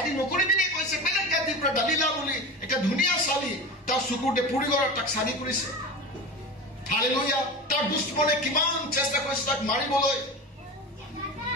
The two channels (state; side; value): normal; both; correlation 0.28